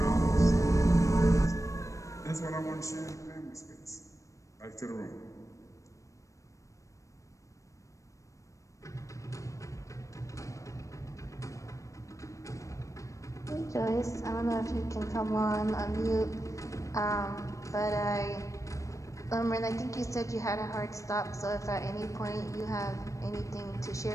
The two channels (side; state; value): right; late; 0.15 ms